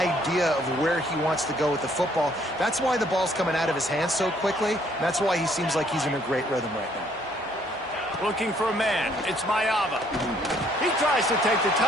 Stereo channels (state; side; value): normal; both; correlation 0.65